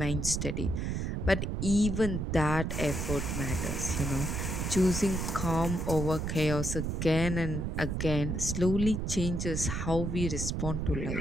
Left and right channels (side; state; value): right; noise; rumble, 2 dB below the sound